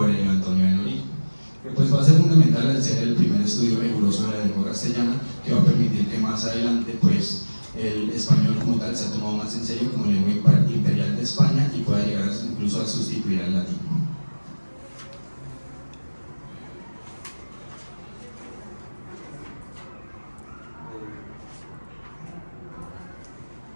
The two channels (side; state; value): both; inverted; correlation -1.00